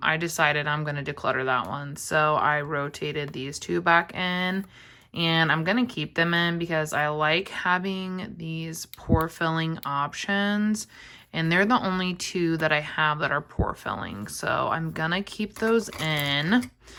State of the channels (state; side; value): identical; both; correlation 1.00